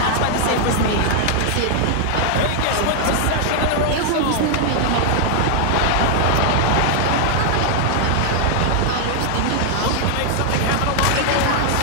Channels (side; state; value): both; different; correlation 0.00